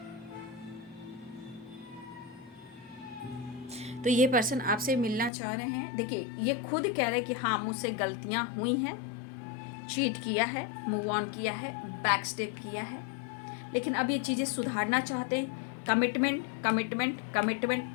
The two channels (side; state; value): right; drops out; at 5.3 s